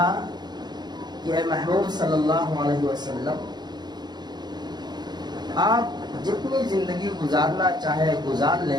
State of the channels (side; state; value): left; late; 0.20 ms